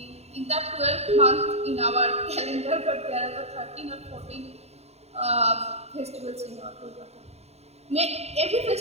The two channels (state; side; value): late; left; 0.31 ms